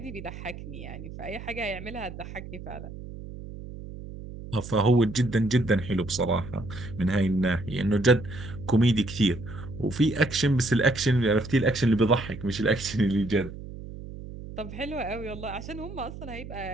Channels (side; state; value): right; noise; hum, 12 dB below the sound